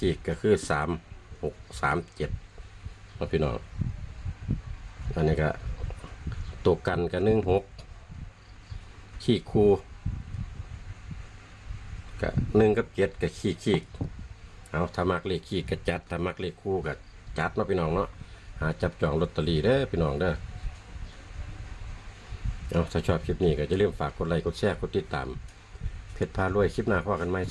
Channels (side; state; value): both; identical; correlation 1.00